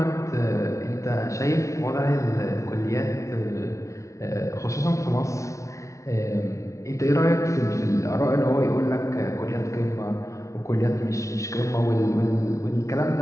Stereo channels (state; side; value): late; right; 0.15 ms